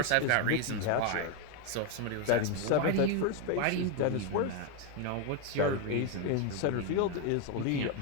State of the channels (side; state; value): both; different; correlation 0.01